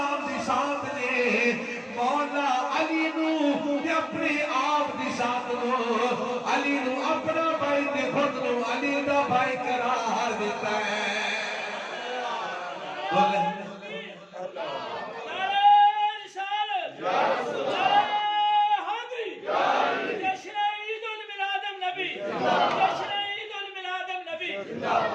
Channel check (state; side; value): identical; both; correlation 1.00